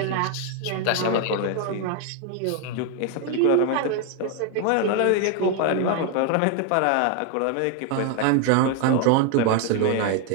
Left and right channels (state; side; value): different; both; correlation 0.01